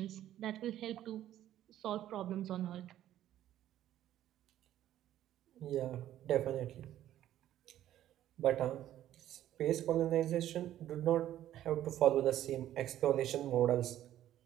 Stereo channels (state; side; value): quieter; left; 12.5 dB